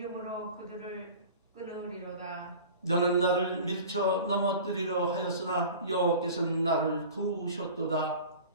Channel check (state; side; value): inverted; both; correlation -0.39